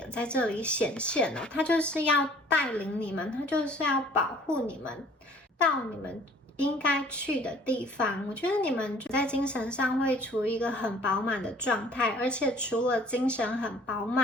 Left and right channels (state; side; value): normal; both; correlation 0.54